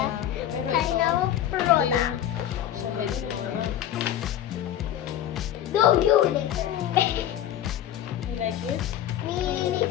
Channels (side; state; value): right; quieter; 11.4 dB